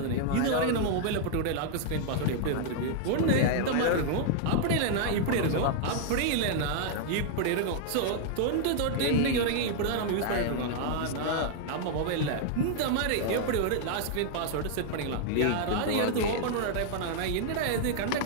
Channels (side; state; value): both; different; correlation 0.00